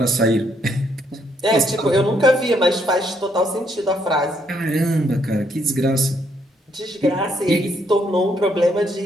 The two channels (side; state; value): both; normal; correlation 0.72